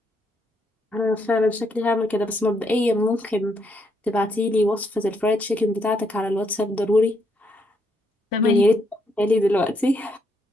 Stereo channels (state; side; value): normal; both; correlation 0.75